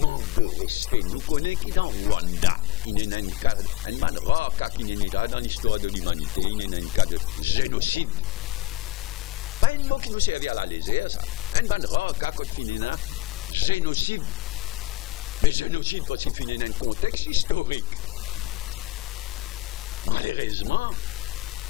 de respect. Nous connaissons qui dans Rwanda, il y a un cas, un rare cas qui n'est pas dans l'histoire de l'humanité, il y a un cas de génocide. Pas un mot qui nous servait à la légère, ça. Un rare cas quand il y a un génocide. Mais génocide parce qu'il finit dans un contexte historique. Malheureusement,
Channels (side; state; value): right; quieter; 15.3 dB